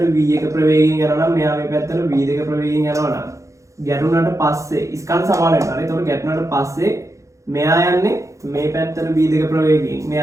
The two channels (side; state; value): left; late; 0.15 ms